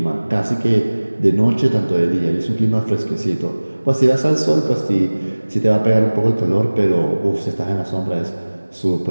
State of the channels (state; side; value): inverted; both; correlation -1.00